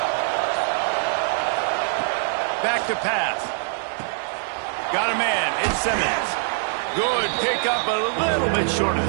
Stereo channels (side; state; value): left; silent; digital silence